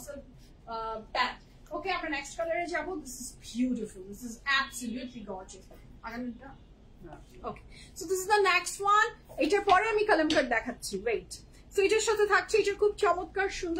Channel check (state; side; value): identical; both; correlation 1.00